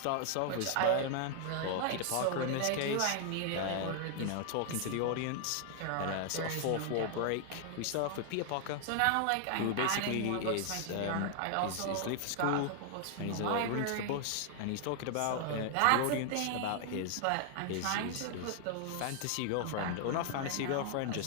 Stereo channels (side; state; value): both; different; correlation 0.00